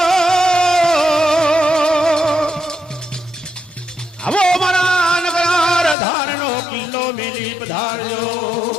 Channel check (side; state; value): right; drops out; at 6.0 s